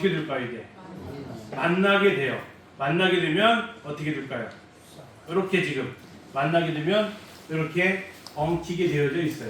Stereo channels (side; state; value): both; identical; correlation 1.00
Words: 될까요? 이게 만나게 돼요. 만나게 되면 어떻게 될까요? 이렇게 지금 만나게 되면 이렇게 엉키게 되어져